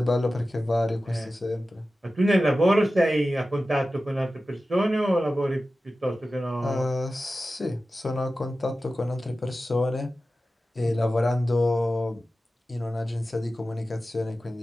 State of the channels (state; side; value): normal; both; correlation 0.94